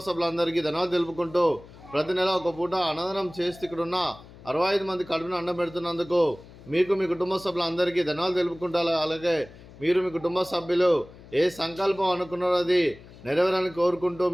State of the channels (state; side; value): noise; left; hum, 20 dB below the sound